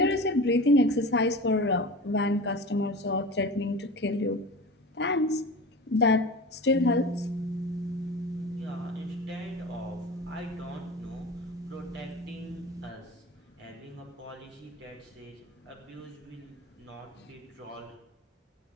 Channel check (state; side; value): normal; both; correlation 0.33